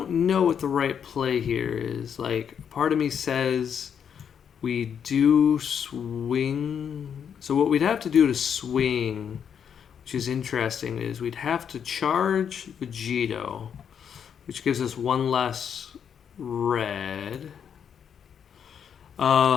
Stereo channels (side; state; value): right; quieter; 7.9 dB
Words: know what the right play here is. Like, part of me says we do swing. So what we'd have to do to swing, which is interesting, is we'd have to charge Vegito, which gives us 1 less red.